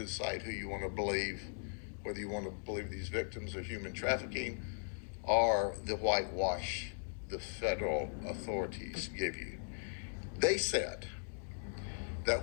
who you want to believe, whether you want to believe these victims of human trafficking or the whitewash the federal authorities give you. They said that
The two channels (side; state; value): right; silent; digital silence